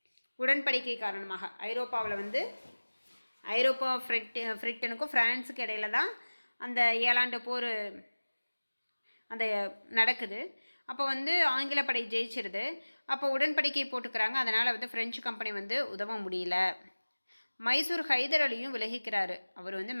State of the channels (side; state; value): both; inverted; correlation -1.00